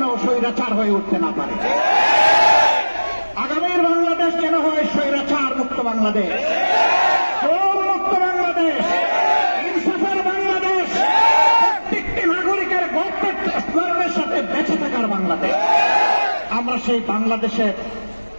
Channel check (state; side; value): inverted; both; correlation -1.00